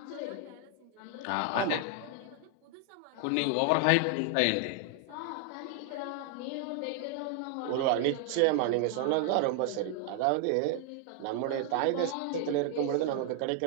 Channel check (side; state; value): both; different; correlation 0.00